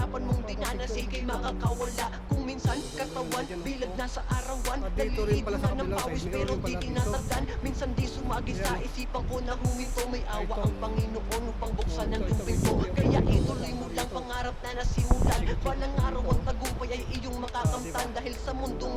mong dinanas, ikay makakawala. Kung minsan katawan, bilag na sa arawan, naliligo na ng pawis pero di tinatagdan. Minsan di sumagi sa isipan ko na huminto, may awa ang Panginoon upang buksan ang tubig mo. Kaya ituloy mo lang pangarap na nasimulan. Balang araw ang tagumpay ay iyong makakamtan. Dahil sa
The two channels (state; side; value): identical; both; correlation 1.00